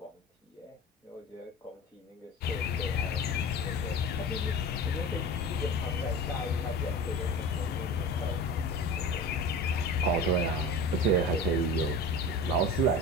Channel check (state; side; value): normal; both; correlation 0.33